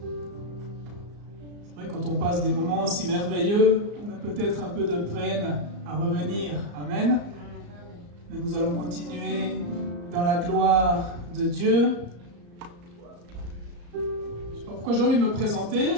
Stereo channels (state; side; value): late; left; 34 ms